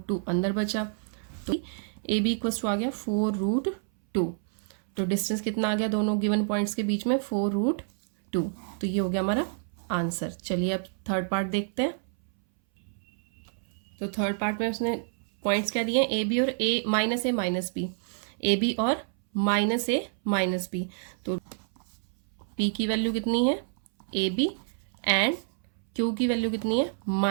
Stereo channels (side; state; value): left; silent; 59 dB below the other